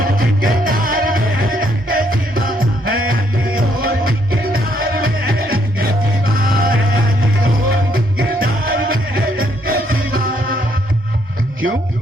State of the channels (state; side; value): normal; both; correlation 0.71